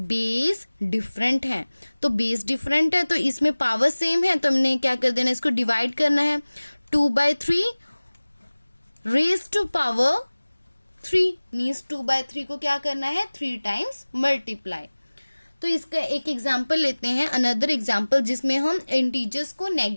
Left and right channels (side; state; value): both; inverted; correlation -1.00